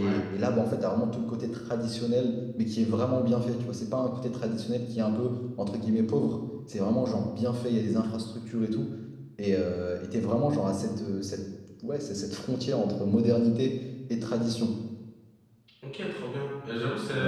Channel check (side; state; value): both; identical; correlation 1.00